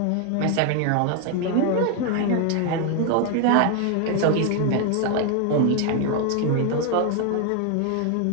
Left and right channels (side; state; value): both; different; correlation 0.01